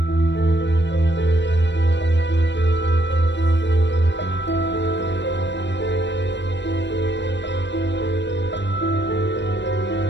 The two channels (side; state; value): right; late; 0.52 ms